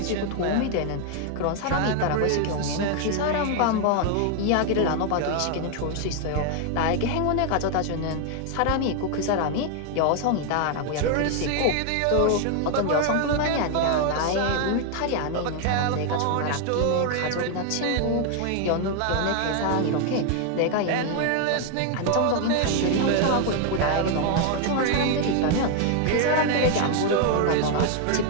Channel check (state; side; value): different; both; correlation 0.00